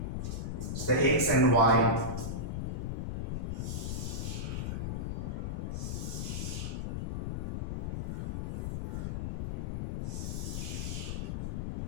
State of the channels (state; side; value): noise; left; rumble, 1 dB below the sound